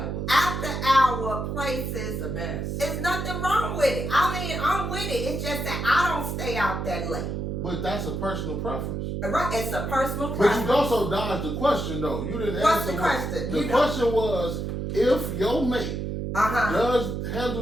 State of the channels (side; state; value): right; noise; hum, 3 dB below the sound